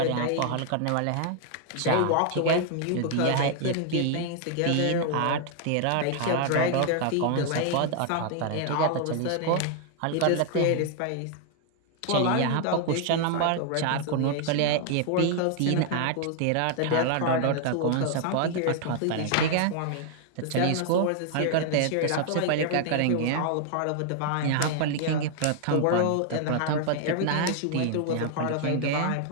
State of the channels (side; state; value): both; different; correlation 0.00